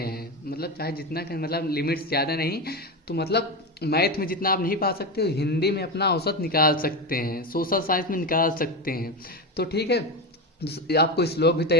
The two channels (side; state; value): both; normal; correlation 0.17